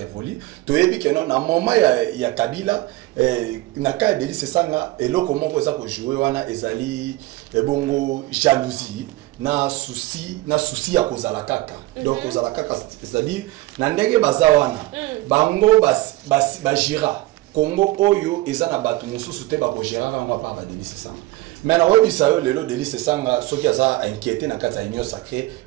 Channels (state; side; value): quieter; left; 18.6 dB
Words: to yebi ke non na moment ya Kabila na ka de lycée sanga eloko moko eza ko jouer wana ezali bongo jalousie na souci ya kozala kaka donc kozala kaka c'est-à-dire na ndenge baza wana bango bajira Congo oyo eza na bato mususu te bako gérer ngwa pa ba délice sanga mais na webisa yo lelo délice sanga soki aza inquiété na kati ya union sacrée